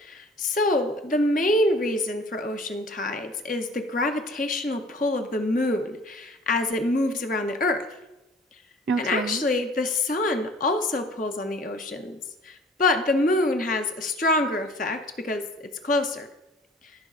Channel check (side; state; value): both; normal; correlation 0.50